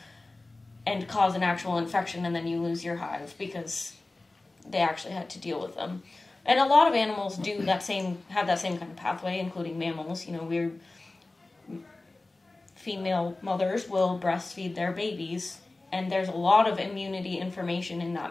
and cause an actual infection, and then you lose your hive because they actually had to deal with them. And a lot of animals have that same kind of pathway, including mammals. You know, female mothers will breastfeed their babies, and there's a lot of immunity information in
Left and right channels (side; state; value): right; quieter; 3.1 dB